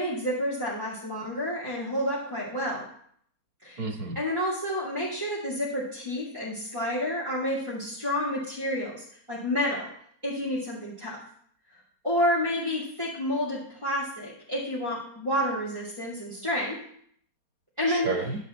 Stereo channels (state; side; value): late; left; 4.3 ms